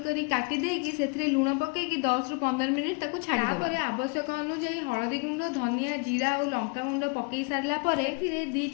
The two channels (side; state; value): right; quieter; 31.7 dB